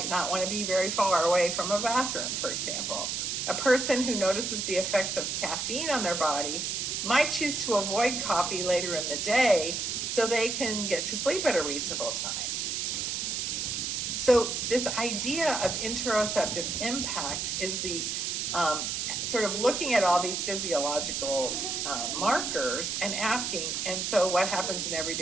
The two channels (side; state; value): right; noise; hiss, 1 dB below the sound